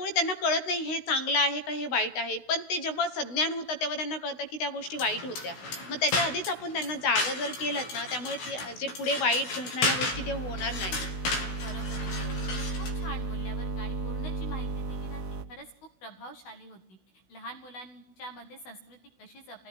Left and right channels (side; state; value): right; late; 16 ms